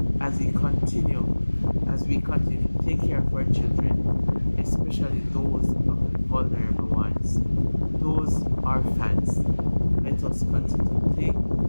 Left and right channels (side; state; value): both; inverted; correlation -1.00